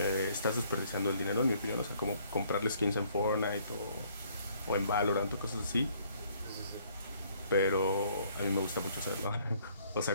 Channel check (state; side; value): inverted; both; correlation -0.63